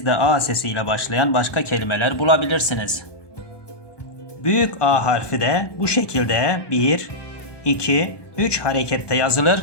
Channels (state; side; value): late; right; 1.2 ms